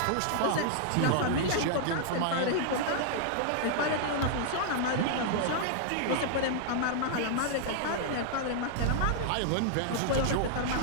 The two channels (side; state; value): both; different; correlation -0.01